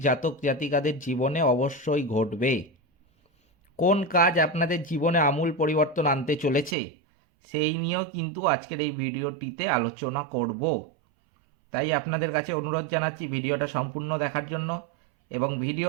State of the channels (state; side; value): drops out; left; at 6.8 s